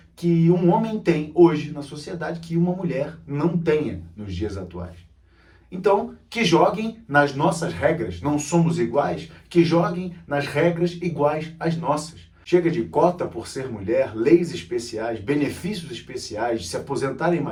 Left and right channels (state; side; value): identical; both; correlation 1.00